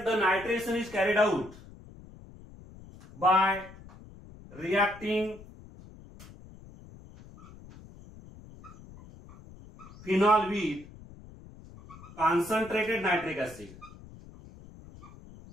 the nitration is carried out by reacting phenol with concentrated nitric acid,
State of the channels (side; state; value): left; noise; rumble, 19 dB below the sound